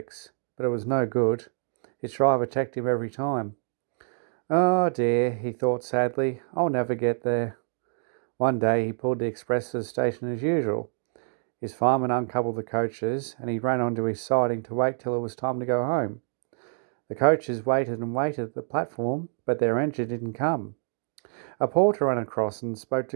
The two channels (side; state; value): left; silent; 60 dB below the other